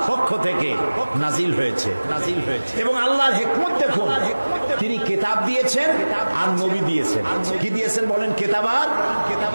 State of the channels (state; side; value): inverted; both; correlation -1.00